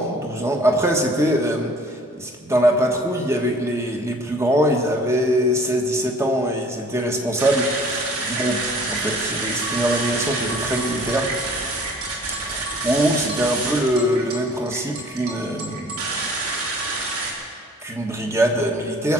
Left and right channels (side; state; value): both; normal; correlation 0.52